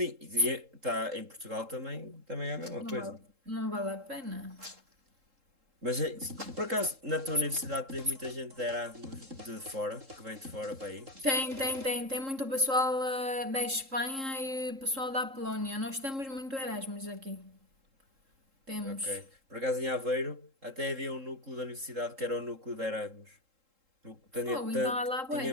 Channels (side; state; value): left; late; 3.7 ms